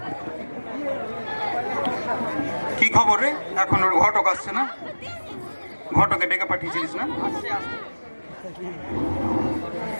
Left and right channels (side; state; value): both; inverted; correlation -1.00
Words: কি খবর রে? এখন ওর ঘটক আসছে না? ঘটকে ডেকে পাঠিয়েছিলিস না?